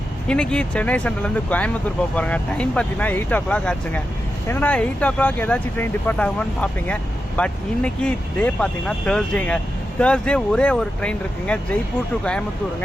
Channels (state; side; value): normal; both; correlation 0.89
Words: இன்றைக்கி சென்னை சென்ட்ரல்லேருந்து கோயம்புத்தூர் போக போகிறாங்க. டைம் பார்த்தீங்கன்னா 8 o'clock ஆச்சுங்க. என்னடா 8 o'clock ஏதாச்சும் ட்ரெயின் டிபார்ட் ஆகுமான்னு பார்ப்பீங்க. பட் இன்றைக்கி டே பார்த்தீங்கன்னா தேர்ஸ்டேங்க. தேர்ஸ்டே ஒரே ஒரு ட்ரெயின் இருக்குங்க, ஜெய்ப்பூர் டு